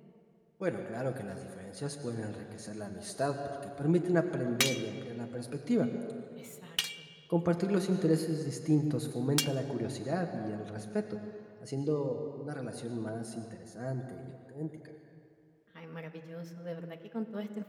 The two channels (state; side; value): identical; both; correlation 1.00